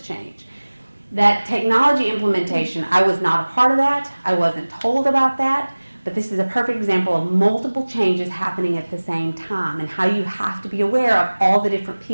change. That technology implementation, I was not a part of that. I wasn't told about that. But this is a perfect example of multiple changes happening at the same time and how you have to be aware of all the different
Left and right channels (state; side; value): inverted; both; correlation -1.00